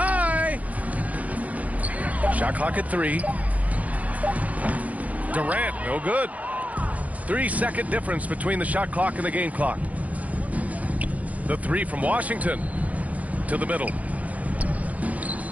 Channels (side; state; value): left; late; 0.071 ms